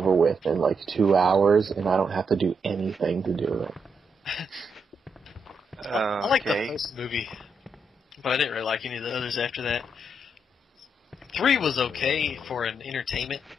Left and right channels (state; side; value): normal; both; correlation 0.80